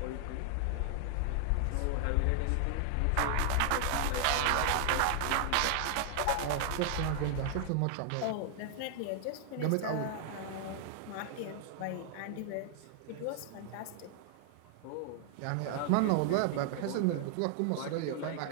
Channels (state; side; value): different; both; correlation 0.00